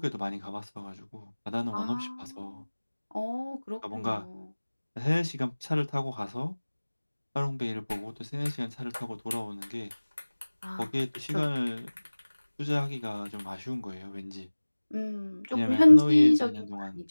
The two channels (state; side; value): inverted; both; correlation -1.00